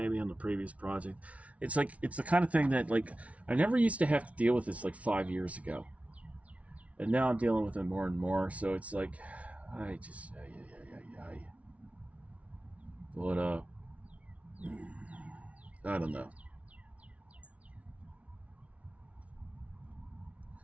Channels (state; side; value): late; left; 0.065 ms